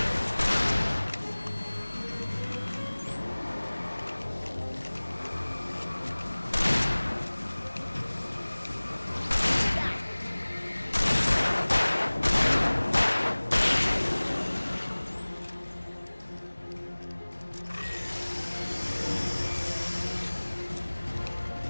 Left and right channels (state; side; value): inverted; both; correlation -1.00